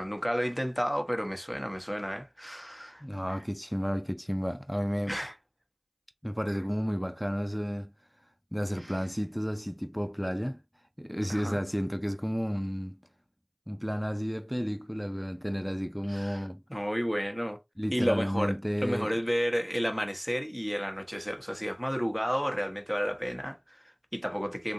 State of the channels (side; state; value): both; identical; correlation 1.00